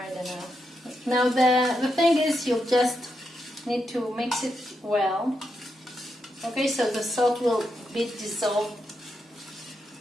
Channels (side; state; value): both; normal; correlation 0.84